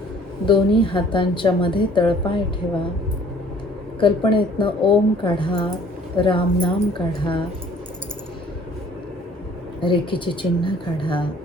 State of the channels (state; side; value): normal; both; correlation 0.55